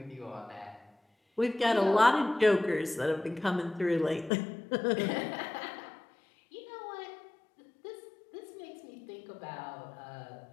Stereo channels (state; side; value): drops out; right; at 4.3 s